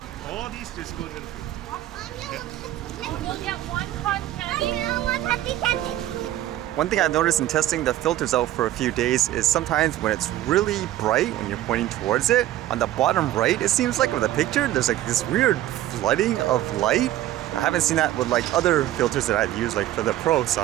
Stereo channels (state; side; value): quieter; left; 13.8 dB